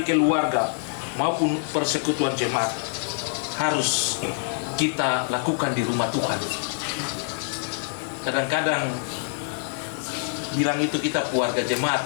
keluarga, maupun persekutuan jemaat harus kita lakukan di rumah Tuhan. Kadang-kadang bilang itu kita keluarga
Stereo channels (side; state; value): right; silent; digital silence